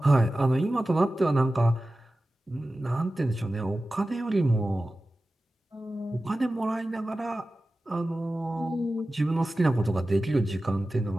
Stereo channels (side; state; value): both; normal; correlation 0.95